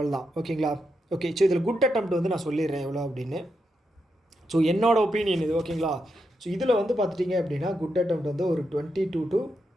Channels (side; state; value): both; normal; correlation 0.84